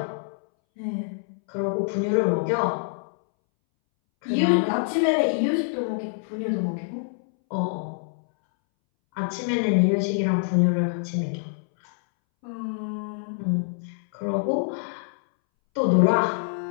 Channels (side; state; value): right; silent; 61 dB below the other